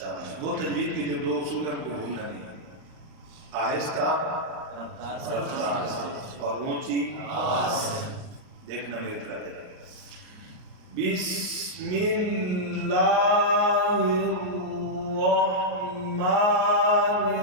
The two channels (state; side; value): late; left; 38 ms